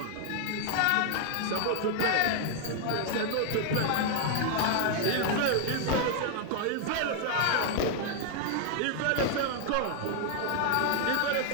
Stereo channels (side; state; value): both; different; correlation 0.00